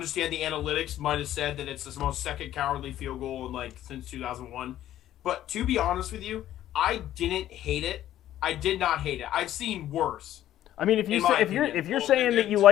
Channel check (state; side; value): quieter; right; 12.6 dB